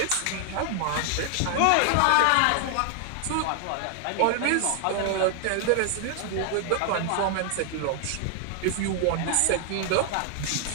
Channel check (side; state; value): both; different; correlation 0.00